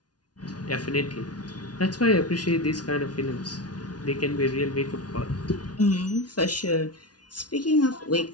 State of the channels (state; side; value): late; right; 0.69 ms